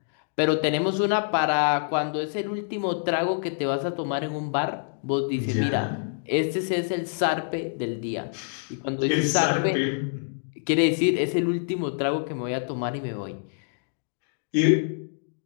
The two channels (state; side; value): silent; right; digital silence